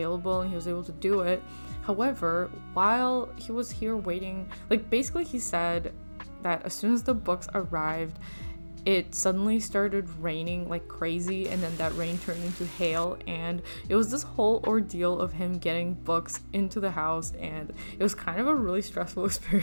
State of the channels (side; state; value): both; inverted; correlation -1.00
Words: and he was able to do it. However, while he was here waiting, like basically he said that as soon as the books arrived, it suddenly started raining like crazy, and then that rain turned into hail, and it was this whole ordeal of him getting books into the house, and it was kind of a really stressful